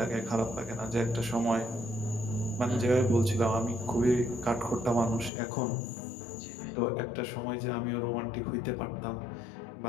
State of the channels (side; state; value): right; drops out; at 5.3 s